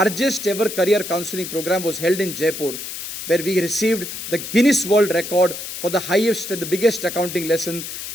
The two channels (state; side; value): noise; left; hiss, 8 dB below the sound